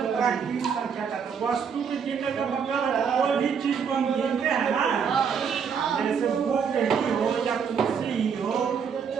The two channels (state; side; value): quieter; left; 6.7 dB